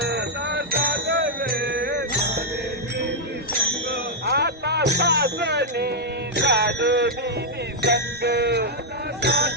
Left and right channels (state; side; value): normal; both; correlation -0.03